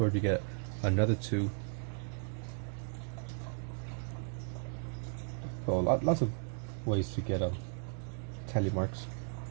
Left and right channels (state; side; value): silent; left; 54 dB below the other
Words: you get another 2. So lots of ways to get tally marks.